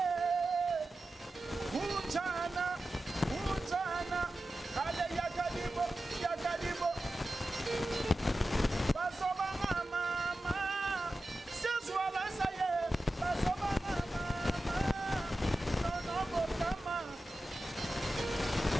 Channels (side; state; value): both; normal; correlation 0.93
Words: kunjana ale yakadibo basoba mama sezwala saye basoba mama nono bokama